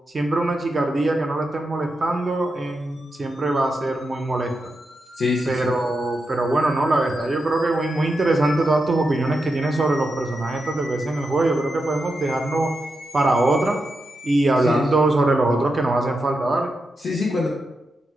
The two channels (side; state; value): both; normal; correlation 0.87